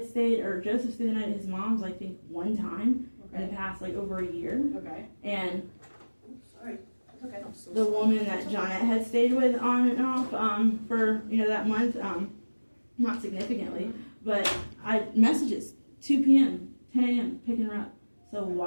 stayed, or Joseph stayed the night at his mom's, I think, one time in the past, over a year. Okay. And sorry. Okay. The woman that Johnette had stayed with on and off for that month, not significantly, but messages 2 p.m., 10 a.m. picking her up. So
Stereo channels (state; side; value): inverted; both; correlation -1.00